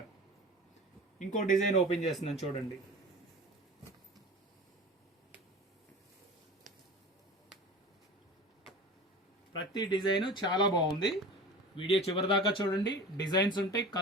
ఇంకో డిజైన్ ఓపెన్ చేస్తున్నాను చూడండి. ప్రతి డిజైన్ చాలా బాగుంది. వీడియో చివరి దాకా చూడండి. డిజైన్స్ ఉంటాయి,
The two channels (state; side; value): normal; both; correlation 0.36